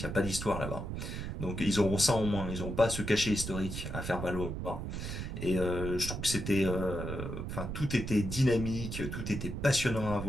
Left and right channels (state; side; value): noise; right; rumble, 5 dB below the sound